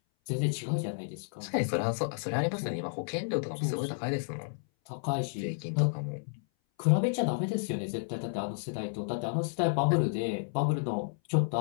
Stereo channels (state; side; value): silent; right; 57 dB below the other